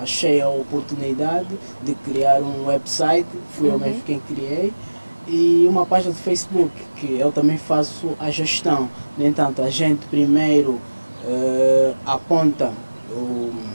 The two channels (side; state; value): both; inverted; correlation -1.00